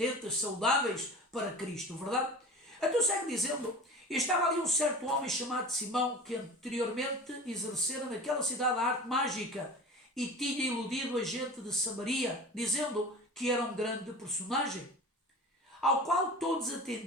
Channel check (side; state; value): both; normal; correlation 0.36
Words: saudáveis para Cristo, verdade? Então segue dizendo, estava ali um certo homem chamado Simão, que anteriormente exercera naquela cidade a arte mágica e tinha iludido a gente de Samaria, dizendo que era um grande personagem, ao qual todos